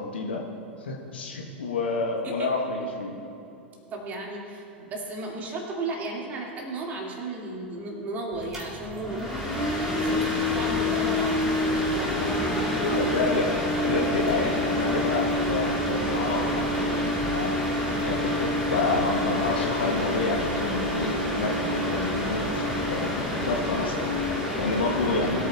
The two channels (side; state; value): both; normal; correlation 0.09